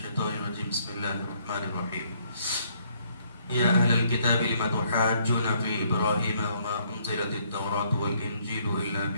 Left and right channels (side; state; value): both; inverted; correlation -0.68